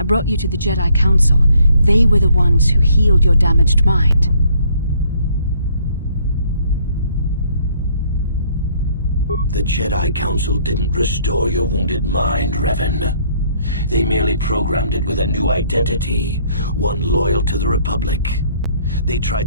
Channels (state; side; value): inverted; both; correlation -0.64